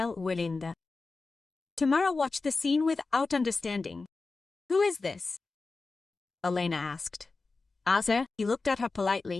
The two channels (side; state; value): right; quieter; 3.9 dB